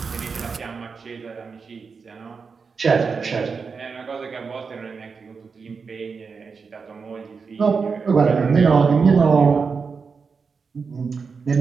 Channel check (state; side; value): quieter; left; 5.2 dB